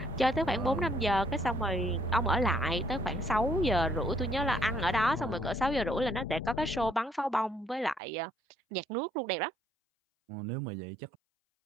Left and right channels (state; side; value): drops out; left; at 8.0 s